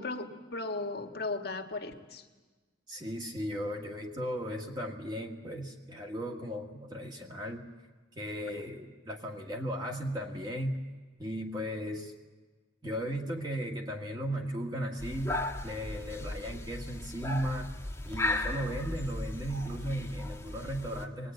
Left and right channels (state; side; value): normal; both; correlation 0.56